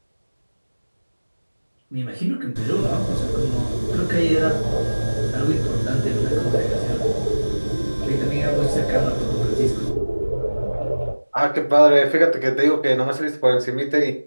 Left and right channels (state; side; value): inverted; both; correlation -1.00